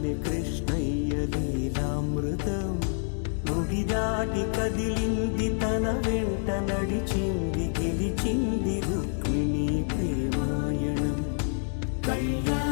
కృష్ణయ్య లీలామృతం గుడి దాటి కదిలింది తన వెంట నడిచింది గెలిచింది రుక్మిణి ప్రేమాయణం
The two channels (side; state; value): right; silent; digital silence